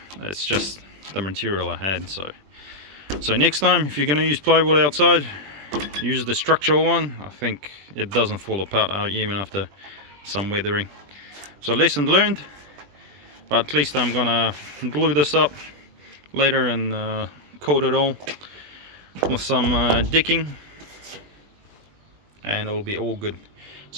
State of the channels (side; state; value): left; late; 20 ms